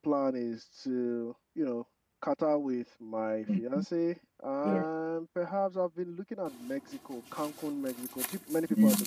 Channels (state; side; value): identical; both; correlation 1.00